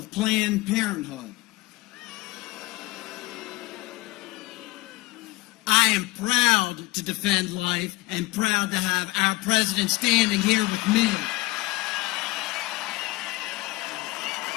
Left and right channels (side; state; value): right; quieter; 21.3 dB